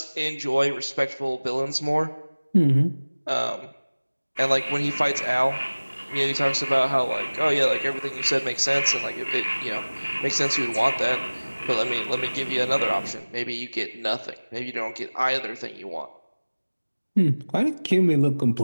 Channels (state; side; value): inverted; both; correlation -1.00